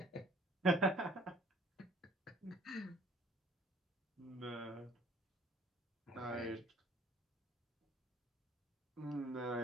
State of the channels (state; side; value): normal; both; correlation 0.56